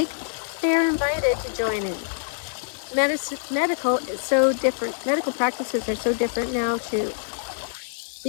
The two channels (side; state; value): right; silent; digital silence